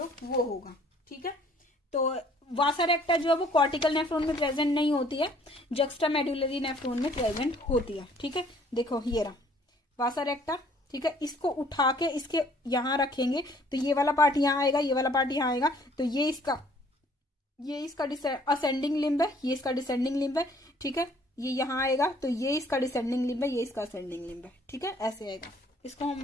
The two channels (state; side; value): normal; both; correlation 0.59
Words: वो होगा, ठीक है। तो वासा रेक्टा जो है वो कॉर्टिकल नेफ्रॉन में प्रेजेंट नहीं होती है, जक्स्टा मेडुलरी नेफ्रॉन में प्रेजेंट होती है, ठीक है। देखो ये रहा वासा रेक्टा, ठीक है, इसको उठा के इसके यहां रखेंगे तो ये वाला पार्ट यहां आएगा, ये वाला पार्ट यहां आएगा, तो ये इसका असेंडिंग लिम्ब है, ये इसका डिसेंडिंग लिम्ब है, ठीक है। ये यहां आएगा तो ये इसका डिसेंडिंग लिम्ब है, ये इसका असेंडिंग लिम्ब है, ठीक है, ऐसे आएगा। इसको